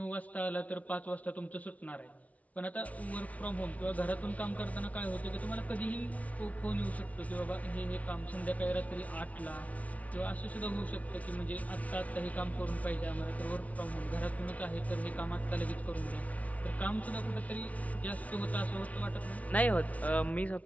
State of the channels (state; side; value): late; right; 0.068 ms